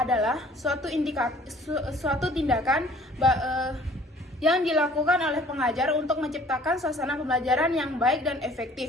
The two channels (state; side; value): normal; both; correlation 0.53